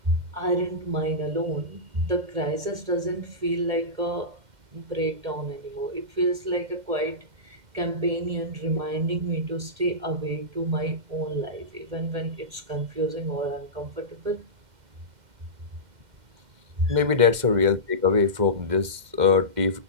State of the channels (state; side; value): late; left; 2.1 ms